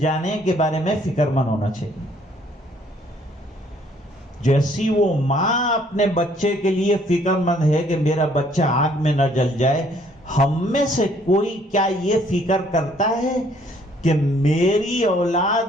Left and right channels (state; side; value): normal; both; correlation 0.63